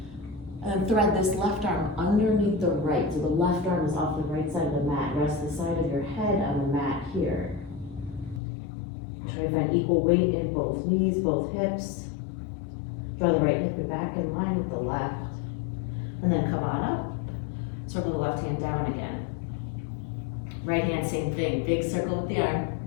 And then thread this left arm underneath the right. So the left arm is off the right side of the mat. Rest the side of your head on the mat here. Try to find equal weight in both knees, both hips. Draw the right hip back in line with the left. And then come on up. Circle the left hand down again. Right hand, same thing. Big circle with the arm.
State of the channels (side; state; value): right; drops out; at 8.4 s